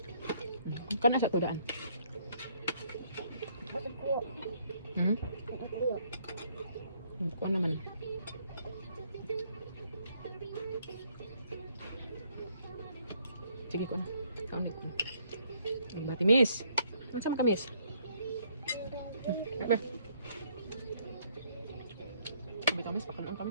Kana sa to daan. Bakit ko? Bakit ko? Kuha naman. Sige ko na. Kaunit ko. Bati miss. Ano sama ka miss? Ba? Sabi ka miss, pakalaan ka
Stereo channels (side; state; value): both; inverted; correlation -0.67